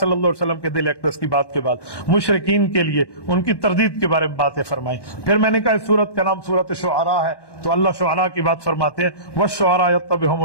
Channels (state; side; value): late; right; 1.1 ms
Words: اللہ علیہ وسلم کے دل اقدس کی بات کے بعد مشرکین کے لیے ان کی تردید کے بارے میں باتیں فرمائیں۔ پھر میں نے کہا اس سورت کا نام سورت شعراء ہے، تو اللہ شعراء کی بات فرماتے ہیں، وَالشُّعَرَاءُ يَتَّبِعُهُمُ